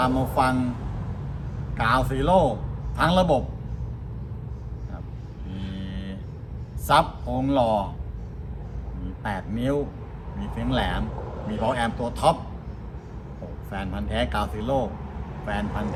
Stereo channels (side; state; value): both; identical; correlation 1.00